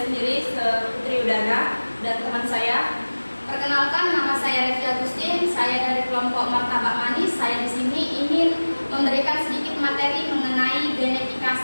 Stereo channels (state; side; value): inverted; both; correlation -1.00